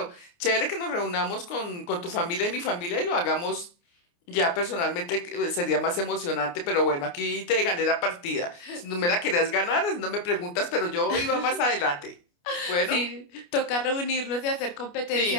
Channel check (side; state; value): right; late; 29 ms